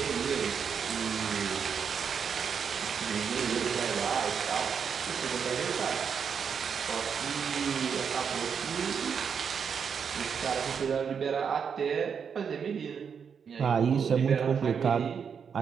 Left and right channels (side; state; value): left; quieter; 6.8 dB